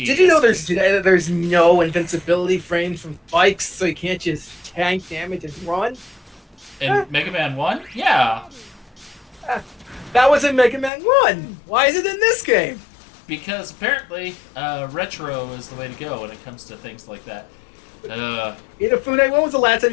you know there's no invincibility frames from spikes, so you can't just tank damage and run? In Mega Man 1? Yeah. That was in Mega Man 1. Why is it in this game? Because apparently, retro is the way to go when it comes to things like that. Inafune, when was the last time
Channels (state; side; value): drops out; right; at 10.9 s